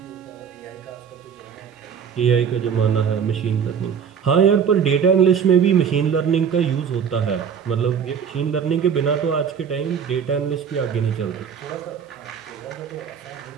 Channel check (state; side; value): quieter; left; 7.2 dB